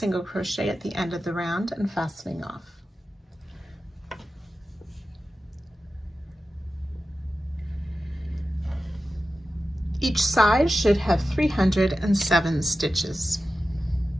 crochet at the end of the round and fastening off. Each side should have 307 stitches.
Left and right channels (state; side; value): normal; both; correlation 0.93